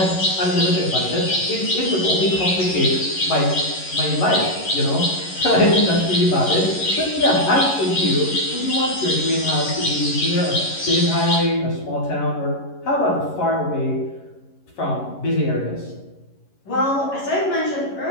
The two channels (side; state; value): right; late; 11 ms